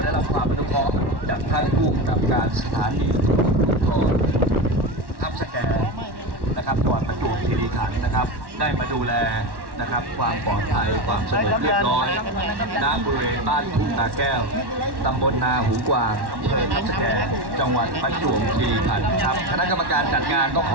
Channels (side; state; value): left; late; 1.1 ms